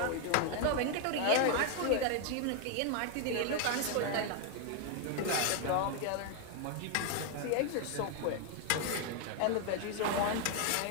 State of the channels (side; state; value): both; different; correlation 0.01